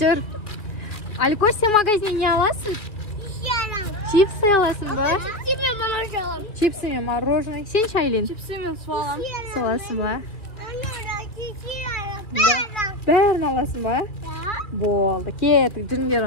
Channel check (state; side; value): late; right; 2.5 ms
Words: Alikosh, sen magazinga olasizmi? Chipsi olasizmi? Chipsimi, мороженое. Sen Shaylin. Chipsimi so'lam. Solasizmi? Bärini olasizmi? Bo'ldi, ketdik, jinglar